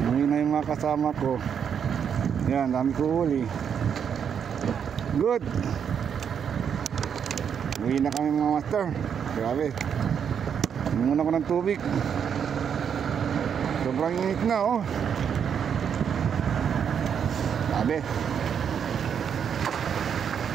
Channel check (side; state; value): left; quieter; 7.7 dB